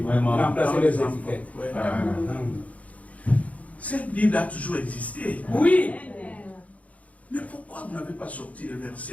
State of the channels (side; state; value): right; late; 0.068 ms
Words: Remplacer les étiquettes. Ouais. Cette Bible a toujours existé. Oui. Mais pourquoi vous n'avez pas sorti les